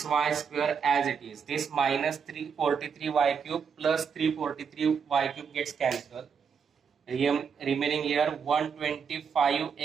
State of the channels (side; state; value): left; quieter; 6.5 dB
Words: square as it is. This minus 343y cube plus 343y cube gets cancelled. Remaining here